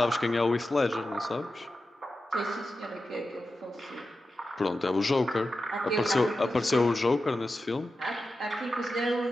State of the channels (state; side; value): normal; both; correlation 0.92